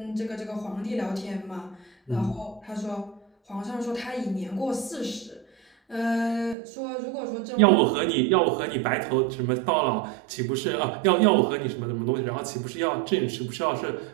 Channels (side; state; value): left; drops out; at 6.6 s